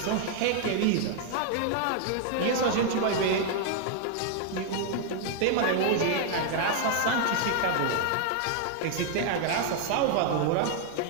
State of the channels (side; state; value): both; different; correlation 0.00